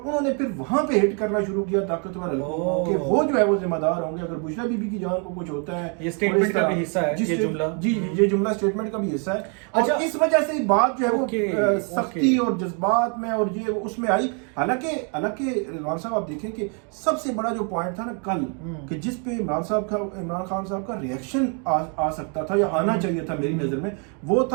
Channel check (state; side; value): quieter; left; 38.6 dB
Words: نے پھر وہاں پہ ہٹ کرنا شروع کیا طاقتور حلقوں کو کہ وہ جو ہے وہ ذمہ دار ہوں گے اگر بشرا بی بی کی جان کو کچھ ہوتا ہے. یہ اسٹیٹمنٹ کا بھی حصہ ہے یہ جملہ. جی یہ جملہ اسٹیٹمنٹ کا بھی حصہ ہے. اور اس وجہ سے بات جو ہے وہ سختی اور جذبات میں اور یہ اس میں آئی. حالانکہ رضوان صاحب آپ دیکھیں کہ سب سے بڑا جو پوائنٹ تھا نا کل کہ جس پہ عمران خان صاحب کا ریئیکشن آ سکتا تھا یا آنا چاہیے تھا میری نظر میں, وہ